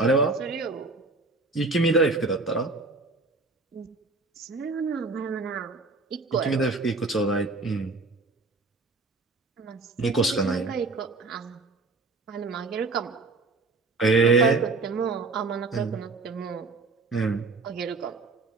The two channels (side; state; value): left; quieter; 3.6 dB